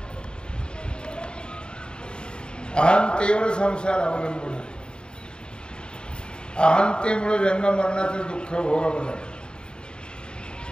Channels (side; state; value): right; late; 0.050 ms